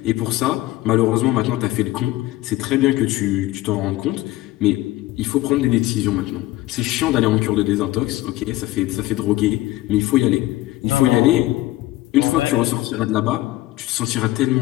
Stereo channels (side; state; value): right; quieter; 17.1 dB